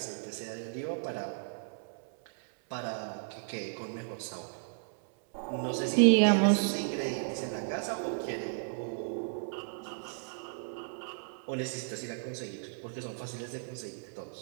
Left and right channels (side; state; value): left; silent; 55 dB below the other